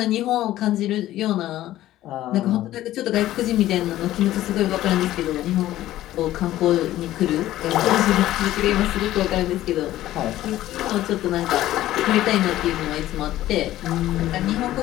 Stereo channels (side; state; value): right; quieter; 14.4 dB